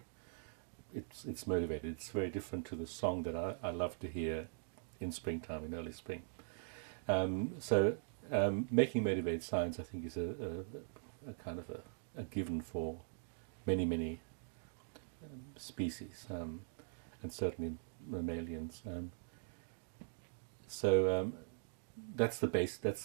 it's motivated. It's very different to the song that I love to hear in springtime, in early spring. Making motivated signs, I think, is a kind of a given for many species, and certainly mammalians. That's the base.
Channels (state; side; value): silent; left; digital silence